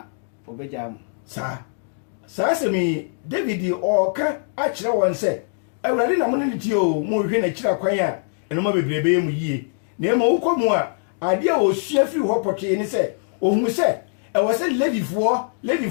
obegya mo saa semi David oka akire won se Awurade na mo ne tie o mo hwehwe na kira kwan a eno ma bebrebe mu yie na ema wokomu a ade a osua firi ho potwe ne se ohun se ɛwɔ se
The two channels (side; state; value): right; silent; digital silence